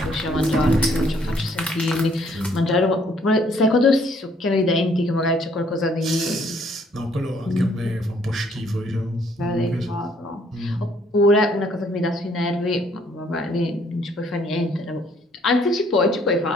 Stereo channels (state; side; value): normal; both; correlation 0.64